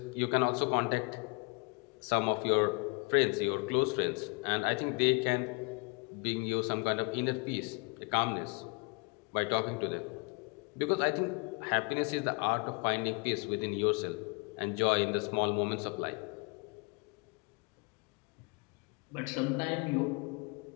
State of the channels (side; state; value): right; quieter; 31.7 dB